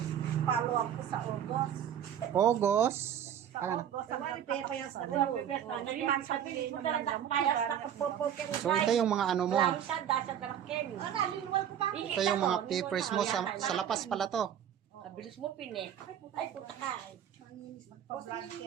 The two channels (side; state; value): left; quieter; 9.6 dB